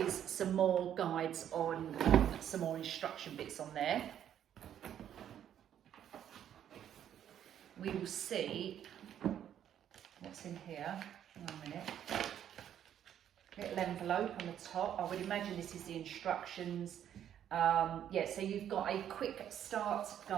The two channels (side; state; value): left; quieter; 10.1 dB